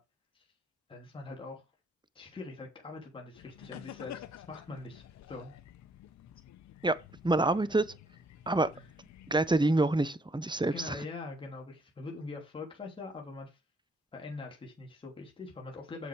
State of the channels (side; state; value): both; normal; correlation 0.68